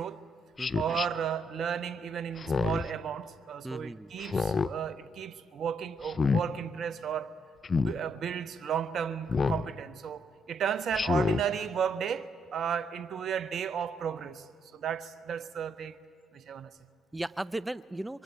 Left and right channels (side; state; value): both; normal; correlation 0.75